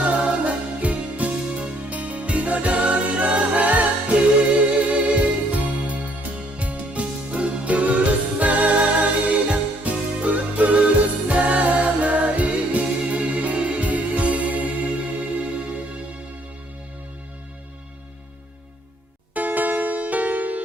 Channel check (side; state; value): both; normal; correlation 0.65